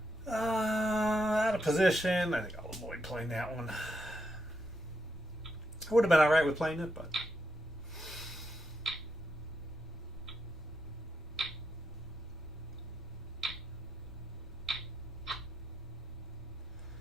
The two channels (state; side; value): normal; both; correlation 0.82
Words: Out of position. I think I'll avoid playing that one. I would have been alright with playing it, but...